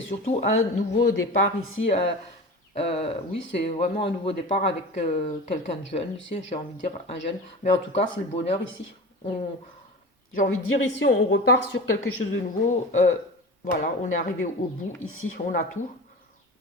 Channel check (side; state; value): both; normal; correlation 0.32